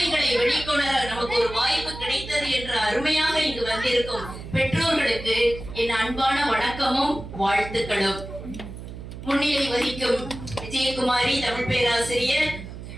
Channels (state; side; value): noise; right; hum, 11 dB below the sound